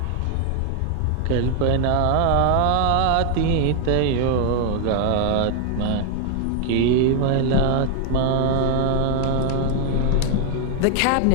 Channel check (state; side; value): different; both; correlation 0.00